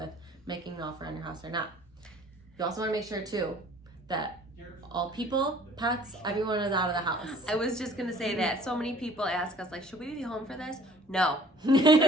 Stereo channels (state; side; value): normal; both; correlation 0.52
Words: making an offer on your house or not. You also want to make sure too that all people, pets, everyone is out of the house. I was just gonna say that. So many people ask us, like, should we be home for this? No.